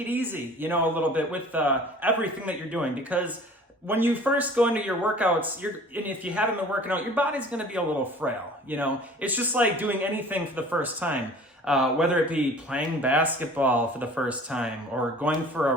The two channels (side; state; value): both; normal; correlation 0.46